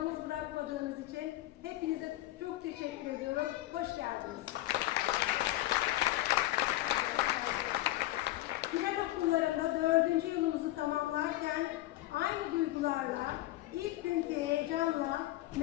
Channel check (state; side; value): quieter; right; 16.6 dB